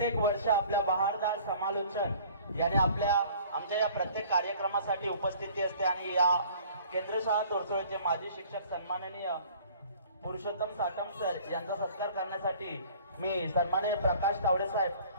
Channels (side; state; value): both; inverted; correlation -0.51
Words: वर्ष आपल्या बहारदार समालोचन याने आमच्या या प्रत्येक कार्यक्रमासाठी उपस्थिती असते आणि या केंद्र शाळा तोरसोळचे माजी शिक्षक सन्माननीय पुरुषोत्तम साटम सर यांचा सत्कार करण्यासाठी मी सन्माननीय प्रकाश तावडे साहेब